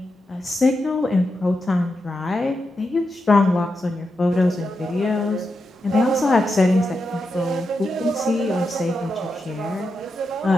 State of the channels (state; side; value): normal; both; correlation 0.87